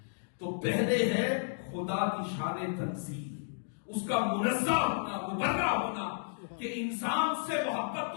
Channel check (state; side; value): silent; right; digital silence